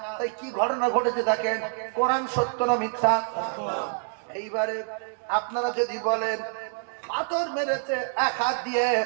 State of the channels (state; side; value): silent; left; digital silence